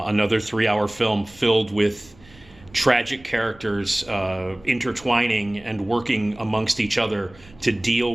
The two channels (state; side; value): noise; right; rumble, 25 dB below the sound